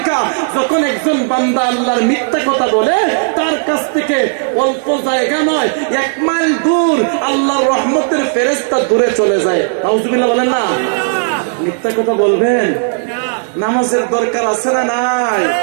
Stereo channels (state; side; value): silent; left; digital silence